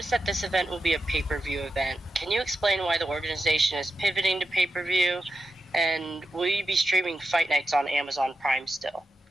that this event will be a pay-per-view event. Can you explain why the organization is pivoting to pay-per-view? And will you be streaming fight nights on Amazon Prime still?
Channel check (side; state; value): both; normal; correlation 0.88